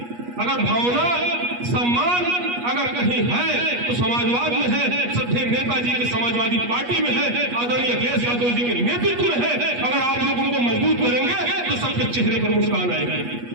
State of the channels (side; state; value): left; late; 8.3 ms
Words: अगर भावना सम्मान अगर कहीं है तो समाजवाद में है, श्रद्धेय नेताजी के समाजवादी पार्टी में है, आदरणीय अखिलेश यादव जी के नेतृत्व में है। अगर आप लोग उनको मजबूत करेंगे तो सबके चेहरे पर मुस्कान आएगी।